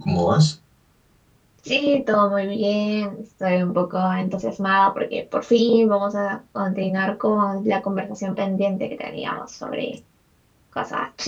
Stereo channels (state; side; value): identical; both; correlation 1.00